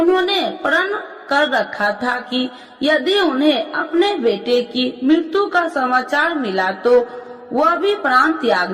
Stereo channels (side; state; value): both; identical; correlation 1.00